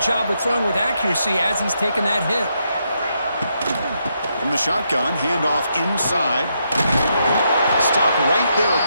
of throwing with accuracy as he's taking that hit. From the shotgun, handoff inside. Stop right there at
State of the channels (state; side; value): inverted; both; correlation -0.79